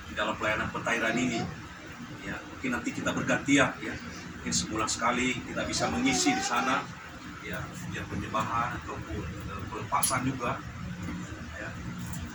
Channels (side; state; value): both; identical; correlation 1.00